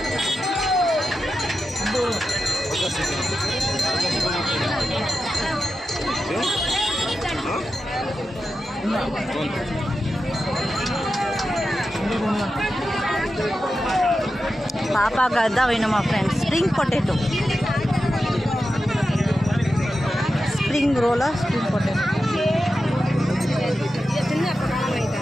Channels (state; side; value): normal; both; correlation 0.91